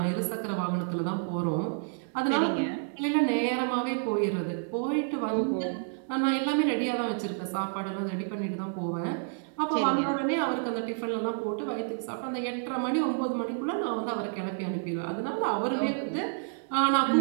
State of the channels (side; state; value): left; silent; digital silence